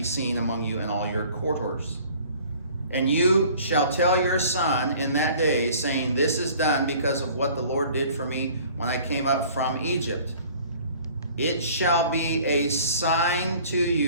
seen among you in all your quarters. And you shall tell your son in that day, saying, this is done because of what the Lord did for me when I came up from Egypt. It shall be a sign to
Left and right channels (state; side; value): inverted; both; correlation -0.50